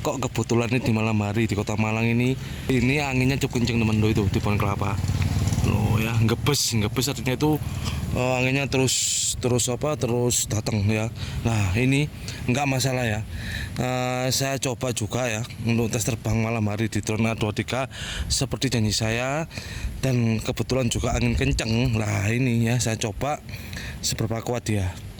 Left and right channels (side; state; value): both; identical; correlation 1.00